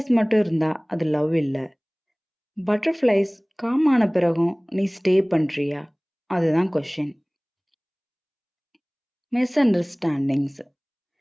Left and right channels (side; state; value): both; identical; correlation 1.00